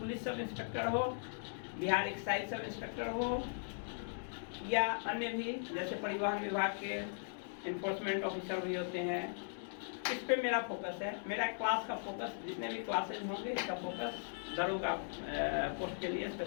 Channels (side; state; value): right; silent; digital silence